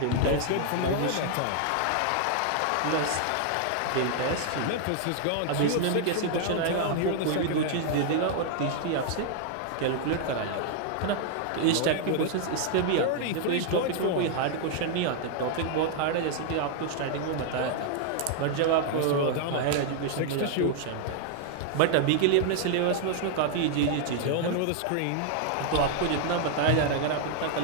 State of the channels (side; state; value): both; different; correlation 0.00